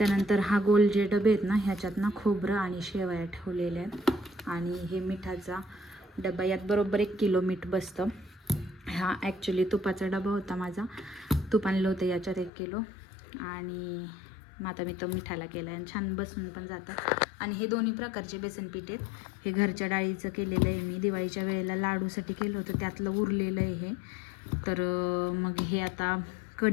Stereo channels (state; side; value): drops out; right; at 12.5 s